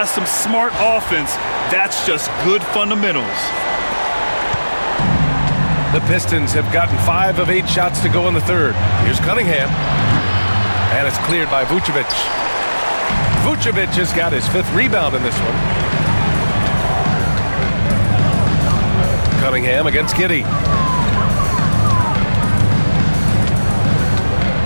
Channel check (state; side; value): inverted; both; correlation -1.00